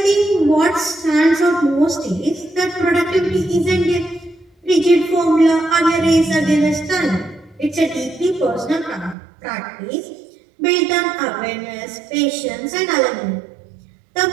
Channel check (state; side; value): drops out; left; at 9.2 s